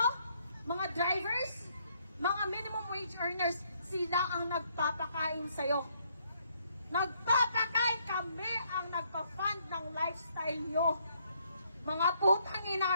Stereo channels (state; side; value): inverted; both; correlation -0.70